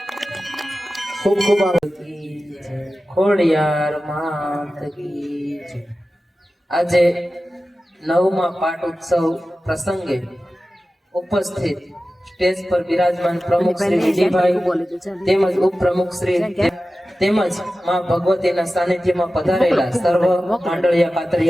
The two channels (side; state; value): both; normal; correlation 0.95